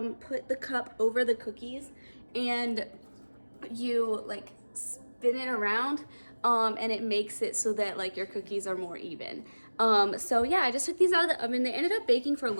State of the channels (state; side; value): inverted; both; correlation -1.00